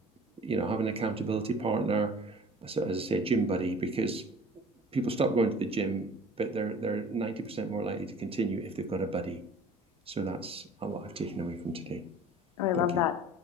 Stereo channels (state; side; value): normal; both; correlation 0.46